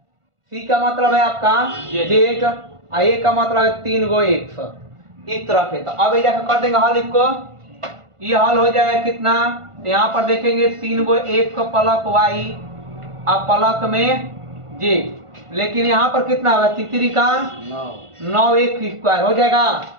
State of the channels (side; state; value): left; late; 1.5 ms